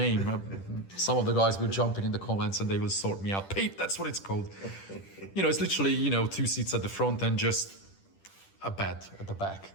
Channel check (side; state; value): right; late; 10 ms